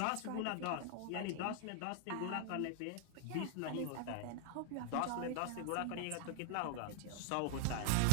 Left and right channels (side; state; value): both; different; correlation 0.00